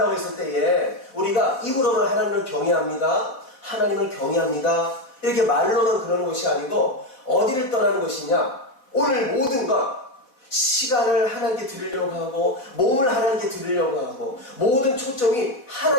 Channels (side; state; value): right; late; 4.0 ms